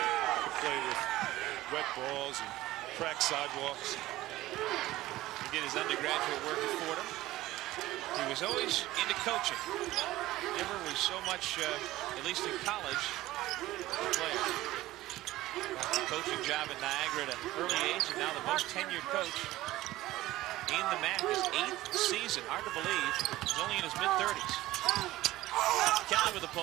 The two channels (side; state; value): left; quieter; 16.6 dB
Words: could play with wet balls and cracked sidewalks. He did his undergraduate work at Fordham. He was always into coaching. Never was so much, at least in college, a player. Got the coaching job at Niagara at an early age, and now the most tenured coach in the MAAC. His 8th season. Hard to believe. He's only in his mid-30s. Kelly with a